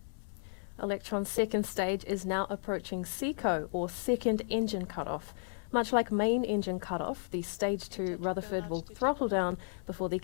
Electron's second stage is now approaching SECO, or second engine cutoff. Much like main engine cutoff, the stage 2 Rutherford will throttle down before the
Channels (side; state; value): right; silent; digital silence